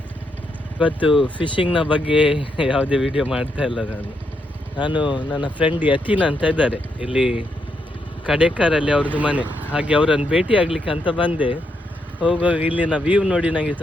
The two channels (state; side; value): normal; both; correlation 0.80